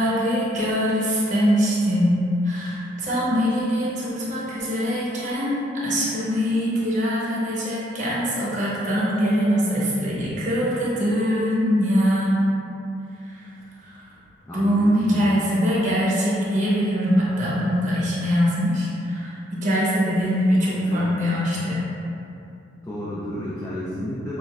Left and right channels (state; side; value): normal; both; correlation 0.72